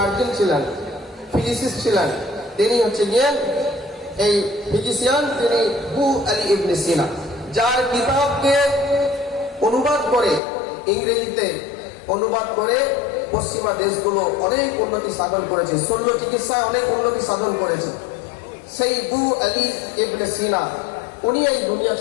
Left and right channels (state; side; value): drops out; right; at 10.4 s